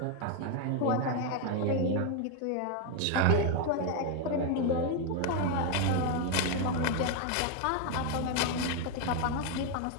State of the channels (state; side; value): different; both; correlation 0.01